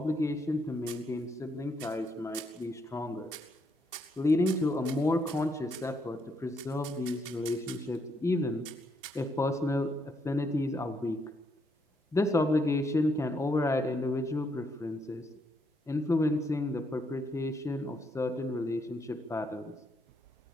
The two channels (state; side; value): normal; both; correlation 0.75